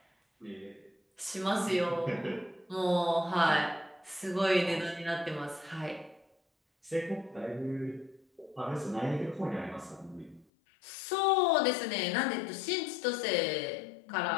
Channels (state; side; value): drops out; right; at 10.5 s